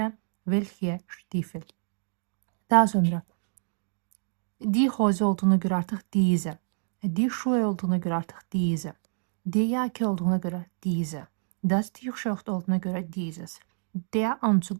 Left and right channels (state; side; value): silent; left; 59 dB below the other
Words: welche Stiefel? Daha sonra die Hose olduğuna göre artık diese. Die Schuhe olduğuna göre artık diese. Die Jacke olduğuna göre diese. Das T-shirt olduğuna göre dieses. Der